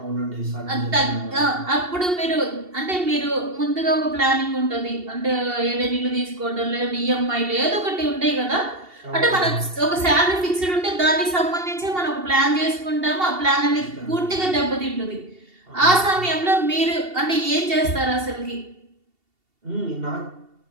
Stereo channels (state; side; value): late; left; 2.7 ms